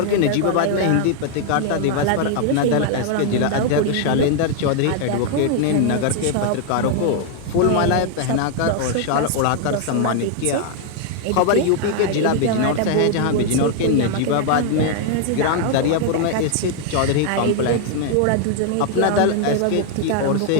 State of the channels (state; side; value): different; both; correlation 0.00